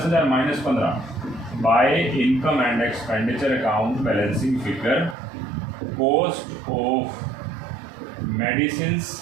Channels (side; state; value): left; drops out; at 5.2 s